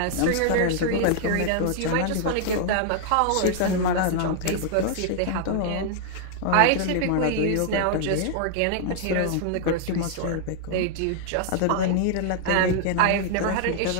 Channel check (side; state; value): both; different; correlation -0.01